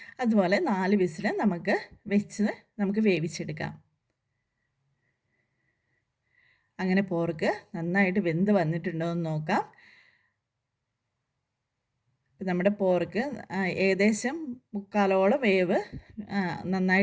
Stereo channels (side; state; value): both; identical; correlation 1.00